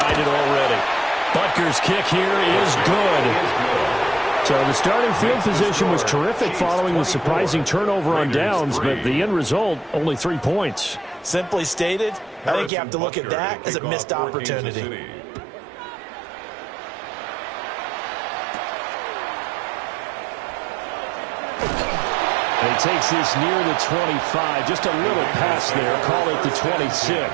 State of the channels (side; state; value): left; drops out; at 12.7 s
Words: already. Butker's kick here is good. So the starting field position was terrific following the surprising turnover on downs, but the end result, only 3 points. Simply stated, I think you have to look at that as a missed opportunity. And he takes this near the 25, just a little pass there, call it the